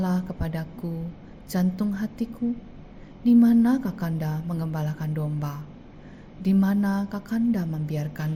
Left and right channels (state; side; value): identical; both; correlation 1.00